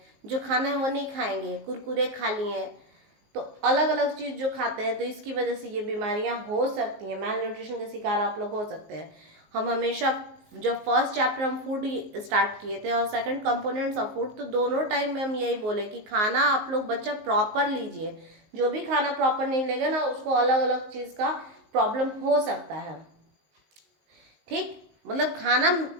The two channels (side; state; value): left; late; 19 ms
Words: जो खाना है वो नहीं खाएंगे, कुरकुरे खा लिए, तो अलग अलग चीज़ जो खाते हैं, तो इसकी वजह से ये बीमारियां हो सकती हैं, मेल न्यूट्रिशन के शिकार आप लोग हो सकते हैं। हम हमेशा जब फर्स्ट चैप्टर हम फूड स्टार्ट किए थे और सेकंड कंपोनेंट्स ऑफ फूड, तो दोनों टाइम में हम यही बोले कि खाना आप लोग बच्चा प्रॉपर लीजिए, जो भी खाना प्रॉपर नहीं लेगा ना उसको अलग अलग चीज़ का प्रॉब्लम हो सकता है। ठीक, मतलब खाना